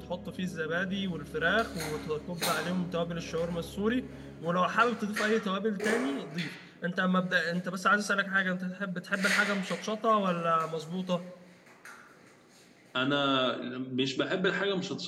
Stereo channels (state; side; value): identical; both; correlation 1.00